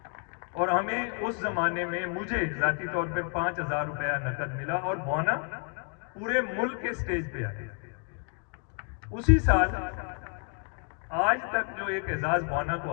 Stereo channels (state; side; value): quieter; right; 39.8 dB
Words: اور ہمیں اس زمانے میں مجھے ذاتی طور پہ 5000 روپیہ نقد ملا، اور بوانا پورے ملک کے سٹیج پہ آئے. اسی سال آج تک جو ایک اعزاز بوانا